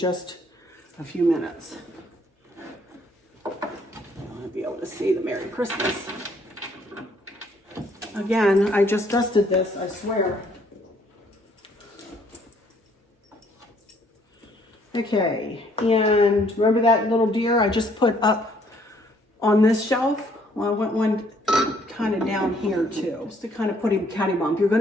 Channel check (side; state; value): both; normal; correlation 0.64